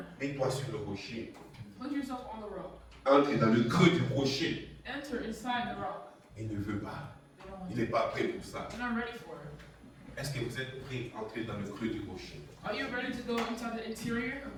Mets-toi sur le rocher. Put yourself on the rock. Entre dans le creux du rocher. Enter inside the rock. Il ne veut pas. They Il n'est pas prêt pour ça. You're not ready for it. Est-ce que vous êtes prêt à entrer dans le creux du rocher? Are you ready to go inside the interior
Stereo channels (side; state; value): both; identical; correlation 1.00